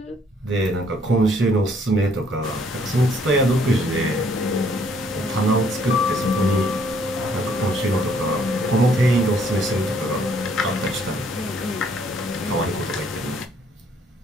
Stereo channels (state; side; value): normal; both; correlation 0.65